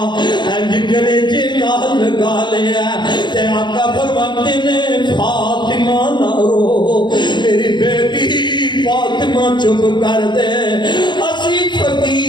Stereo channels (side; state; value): right; late; 0.22 ms